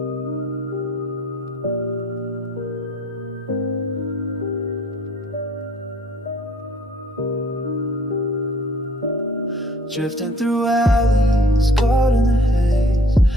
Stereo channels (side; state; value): both; normal; correlation 0.56